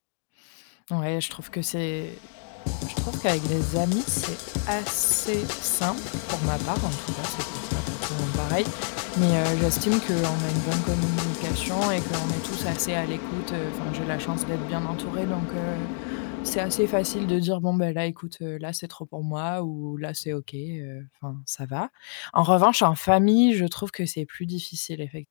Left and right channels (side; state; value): right; silent; digital silence